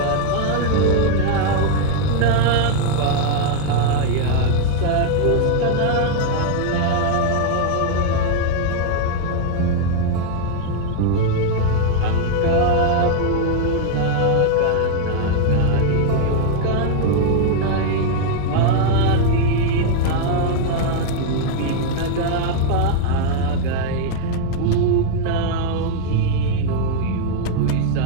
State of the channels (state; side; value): different; both; correlation 0.00